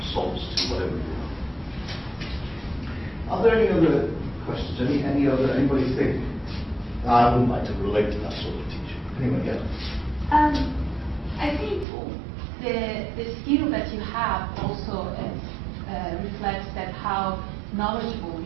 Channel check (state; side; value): drops out; left; at 11.9 s